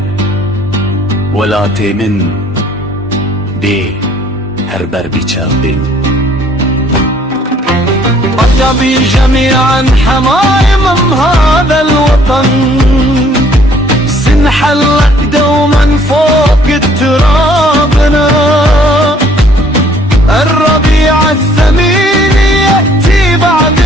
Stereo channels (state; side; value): normal; both; correlation 0.60